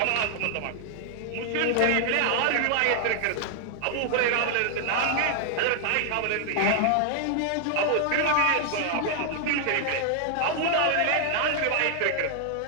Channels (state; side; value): different; both; correlation 0.00